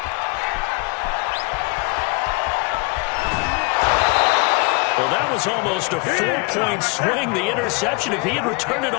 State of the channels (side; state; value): right; quieter; 29.7 dB